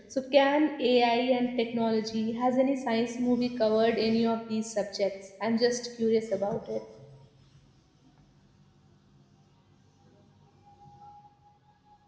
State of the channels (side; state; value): both; identical; correlation 1.00